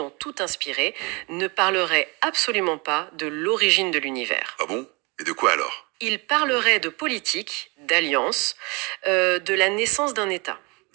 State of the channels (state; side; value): quieter; left; 28.2 dB